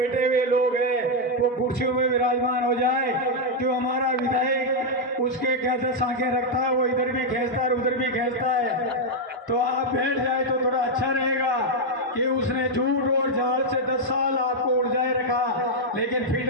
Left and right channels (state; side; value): normal; both; correlation -0.01